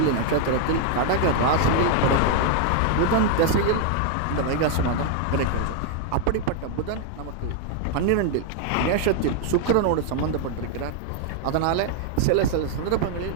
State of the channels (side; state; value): both; different; correlation 0.00